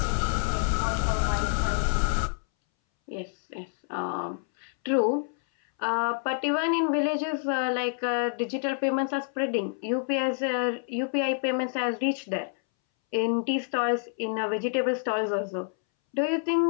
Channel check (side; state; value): right; silent; 60 dB below the other